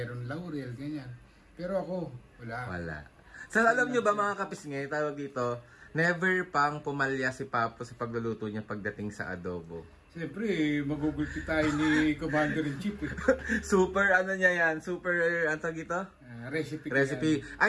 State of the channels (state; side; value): identical; both; correlation 1.00